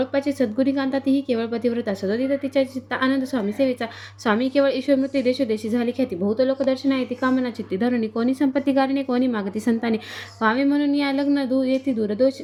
सद्गुणी कांता तीही केवळ पतिव्रता सदोदित तिच्या चित्ता आनंद स्वामी सेवेचा. स्वामी केवळ ईश्वरमूर्ती देशोदेशी झाली ख्याती. बहुत लोक दर्शना येते कामना चित्ती धरुणी. कोणी संपत्ती गारणे कोणी मागती संतानी. व्हावे म्हणून या लग्न येते दूर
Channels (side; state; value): both; identical; correlation 1.00